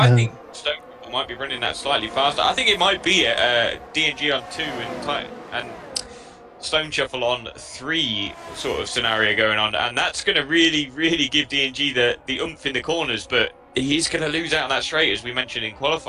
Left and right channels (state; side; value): identical; both; correlation 1.00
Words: think Stone Shuffle might be running that slightly faster. I think it might be D&G on 2 and Stone Shuffle on 3 sort of scenario going on, and that's going to really give D&G the oomph in the corners, but he's going to lose out on that straight, as we mentioned in